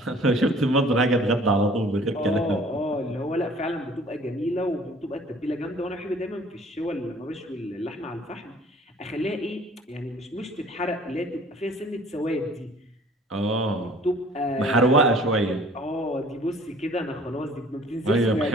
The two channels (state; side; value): normal; both; correlation 0.52